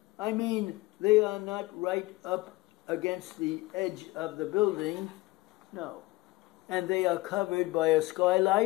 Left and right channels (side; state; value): right; quieter; 20.3 dB